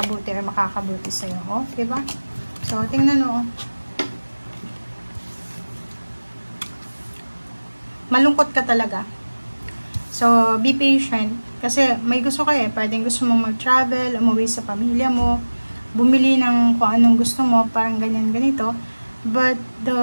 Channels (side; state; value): both; inverted; correlation -1.00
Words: or makakabuti sa'yo. Oh, diba? So, tingnan mo. Malungkot ka talaga. So, be patient. Kasi may gusto ka eh. Pwedeng gusto mong mag-travel, umuwi sa pamilya mo, bumili ng kung anong gusto mo, parang ganyan, ganito. But, the